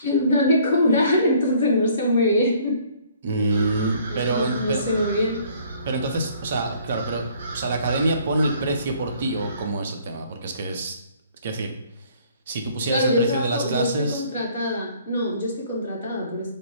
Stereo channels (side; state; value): both; inverted; correlation -0.58